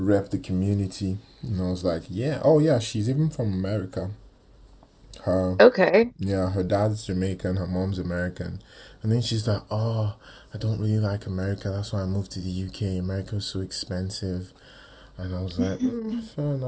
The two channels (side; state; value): both; identical; correlation 1.00